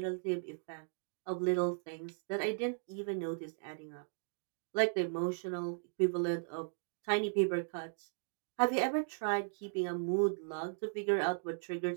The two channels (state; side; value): silent; left; digital silence